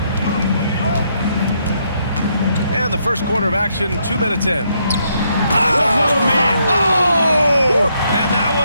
And the first quarter of action, 2 minutes in. Oh, man. Oh! And that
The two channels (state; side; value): inverted; both; correlation -0.75